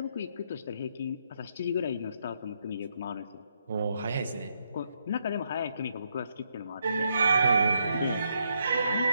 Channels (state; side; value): inverted; both; correlation -0.77